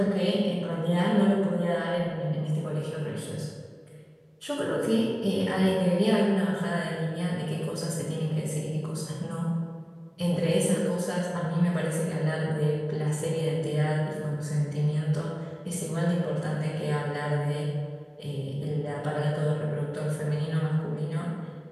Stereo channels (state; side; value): identical; both; correlation 1.00